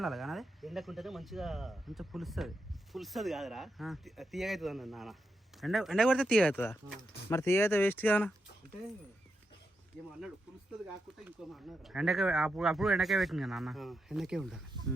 కానీ అది ఎండకుంటేనే మంచిగా పులుస్తుంది కాదురా, తీయగా అవుతుంది అన్న నాన్న. ఎండ కొడితే తీగ అవుతుందా? మరి తీగ అయితే వేస్ట్ కానా అంటే ఏమో అన్నాడు, పులుస్తుంది కాకుండా ఇంకో అన్నాడు. ఎండకే అప్పుడు ఎండకే పెట్టింది కదా అన్న. ఎండకే ఉండాలి.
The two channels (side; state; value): both; normal; correlation 0.85